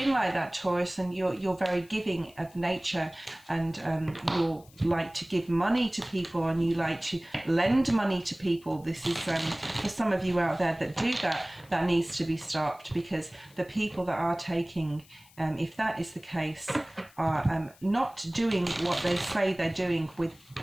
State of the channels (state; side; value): noise; left; hiss, 26 dB below the sound